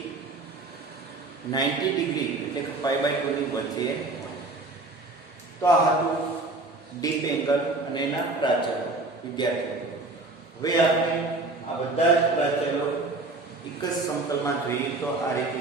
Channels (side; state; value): left; quieter; 3.1 dB